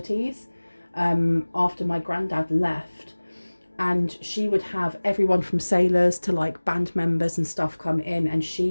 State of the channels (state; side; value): inverted; both; correlation -1.00